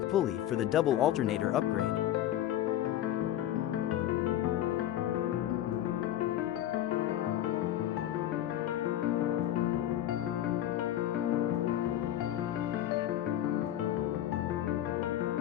pulley for the double alternator upgrade.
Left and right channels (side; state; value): right; quieter; 12.4 dB